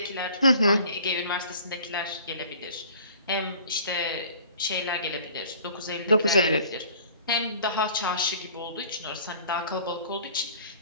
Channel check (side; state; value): both; inverted; correlation -0.49